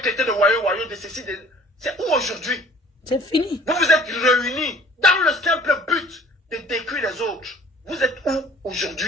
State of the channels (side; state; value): both; normal; correlation 0.52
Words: traité de voyous, de ceci, de... C'est où aujourd'hui? C'est fini. Vous vous êtes réunis dans le simple but de détruire les autres. Vous êtes où